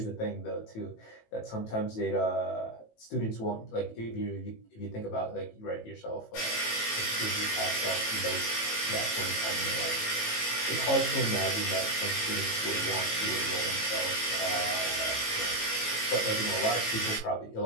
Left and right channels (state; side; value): late; right; 18 ms